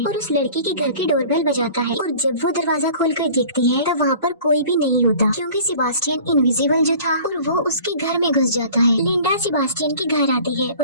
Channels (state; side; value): inverted; both; correlation -0.45